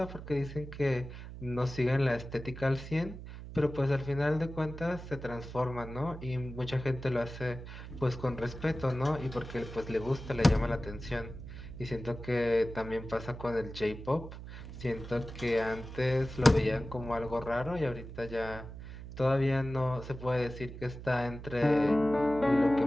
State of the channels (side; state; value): right; noise; hum, 11 dB below the sound